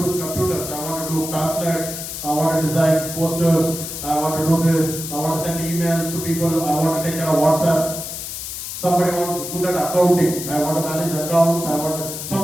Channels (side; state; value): left; noise; hiss, 7 dB below the sound